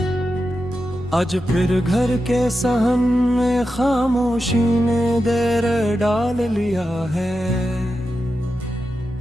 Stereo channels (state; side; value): normal; both; correlation 0.89